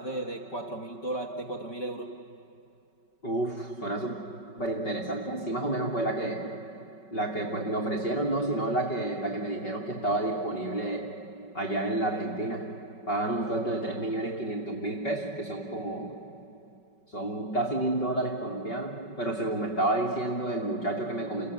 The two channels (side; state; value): right; late; 5.3 ms